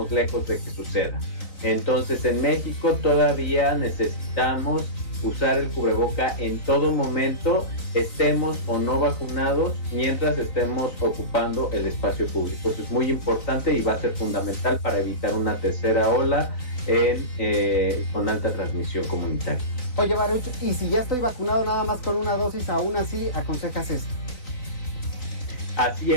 lejos de que suceda. Entonces en México todavía necesitamos usar el cubreboca en todo momento, estemos o no vacunados, mientras estemos ocupando el espacio público. Eso es muy importante y va a ser fundamental para evitar una tercera ola con alta transmisión comunitaria. Oye, Baruch, y si ya estoy vacunado nada más con una dosis, aún así aconsejas esto? Así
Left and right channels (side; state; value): right; late; 4.0 ms